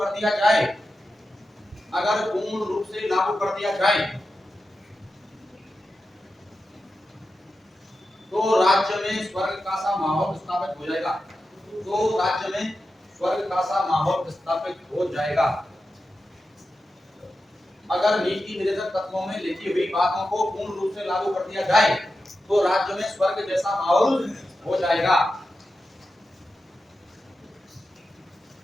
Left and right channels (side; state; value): both; normal; correlation 0.91